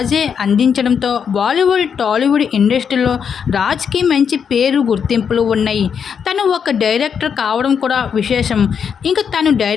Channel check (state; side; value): quieter; right; 7.1 dB